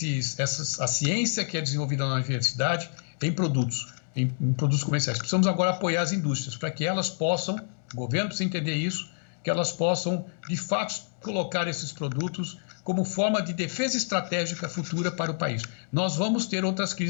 ciência que é desenvolvida na universidade em produtos comerciais. Precisamos agora apoiar as indústrias para que elas possam, o governo precisa entender isso, que elas possam, de fato, colocar esses produtos como forma de defesa estratégica futura para o país. Nós vamos ter outras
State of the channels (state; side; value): silent; right; digital silence